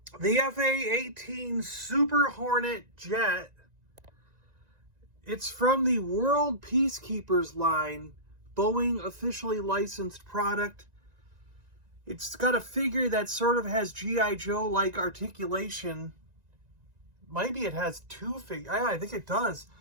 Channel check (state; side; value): late; left; 1.9 ms